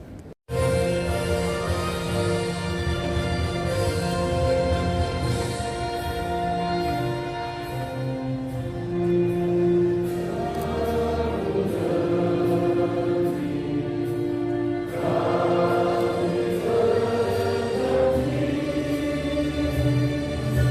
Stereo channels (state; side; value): identical; both; correlation 1.00